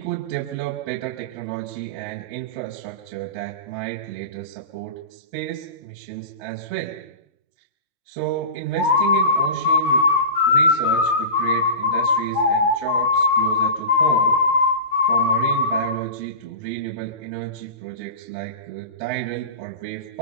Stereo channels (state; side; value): late; left; 3.2 ms